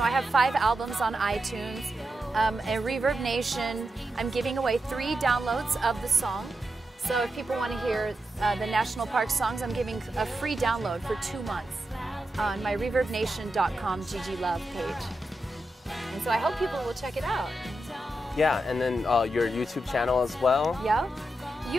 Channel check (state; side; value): normal; both; correlation 0.87